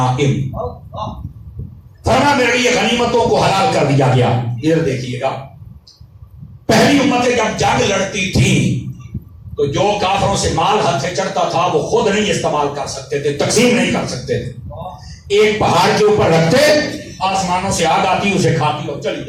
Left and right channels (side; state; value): both; identical; correlation 1.00